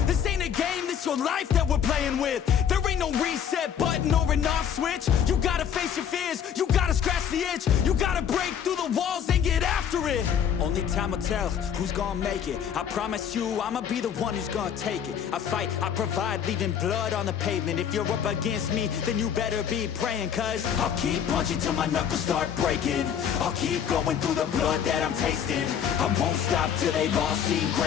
This ain't a game, this your life that we're playing with. There ain't no reset button or an off switch. You gotta face your fears, you gotta scratch the itch. You gotta break through the walls and get after it. Only time will tell who's gonna make it. I promise you, I'ma be the one who's gonna take it. I fight, I provide, leaving blood on the pavement. If you're up against me, then you better be praying. Cause I'll keep punching till my knuckles start breaking. I'll keep going through the blood that I'm tasting. I won't stop till they've all seen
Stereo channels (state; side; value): quieter; right; 8.5 dB